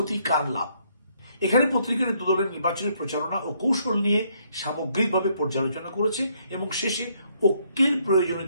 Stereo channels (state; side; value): inverted; both; correlation -0.70